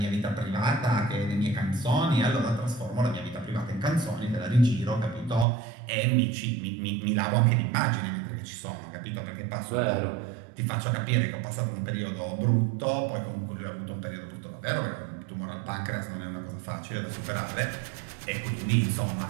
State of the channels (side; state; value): left; drops out; at 5.5 s